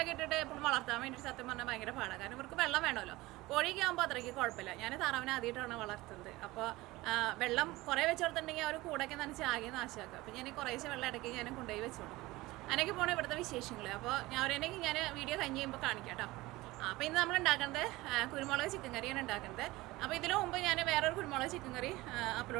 ഇട്ടിട്ട് എപ്പോഴും വളർത്താൻ വേണ്ടിയിട്ട് സത്യം പറഞ്ഞാൽ ഭയങ്കര പാടാണ്. കാരണം ഇവർക്ക് വെള്ളം വേണമല്ലോ. കോഴിയൊക്കെ ആകുമ്പോൾ അത്രയ്ക്ക് കുഴപ്പമില്ല. ഞാൻ താറാവിനെ ആദ്യമായിട്ടാണ് വളർത്തുന്നത്. അപ്പോൾ വെള്ളം കുറേ വെച്ച് കൊടുത്തിട്ടുണ്ടെങ്കിൽ അവർ കൂടൊക്കെ നനച്ച് ആകെ നാശമാക്കുക. അപ്പോൾ ഞാൻ കുറേശ്ശെ വെള്ളം ഇടയ്ക്ക് ഞാൻ കൊണ്ടുപോയി വെച്ച് കൊടുക്കും. അങ്ങനെയൊക്കെ പോകണം ഇവിടുത്തെ വിശേഷങ്ങൾ. അപ്പോൾ ഞാൻ വീഡിയോ കഴിഞ്ഞ് കഴിയുമ്പോൾ കാണിക്കാം കേട്ടോ. അപ്പോൾ ഇന്ന് നമ്മൾ ഉണ്ടാക്കുന്നത് കുരുമുളക് ചിക്കൻ കറിയാണ് ഉണ്ടാക്കുന്നത്. അപ്പോൾ ഇതിനു മുമ്പ് ഞാൻ വേറൊരു കുരുമുളക് ചിക്കൻ കറി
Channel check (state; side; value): quieter; left; 19.8 dB